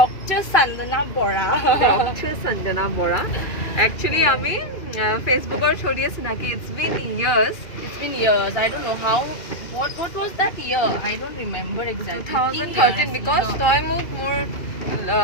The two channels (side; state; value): right; late; 2.4 ms